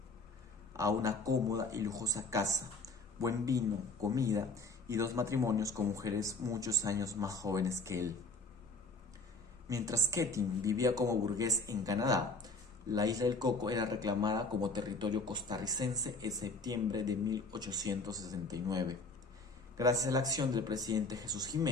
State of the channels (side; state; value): right; quieter; 3.1 dB